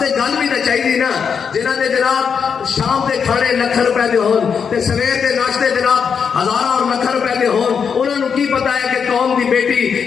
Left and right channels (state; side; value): quieter; right; 6.6 dB